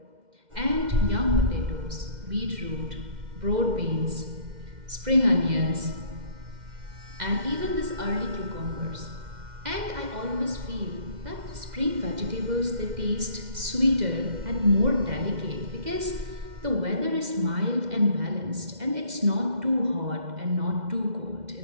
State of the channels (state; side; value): late; left; 2.1 ms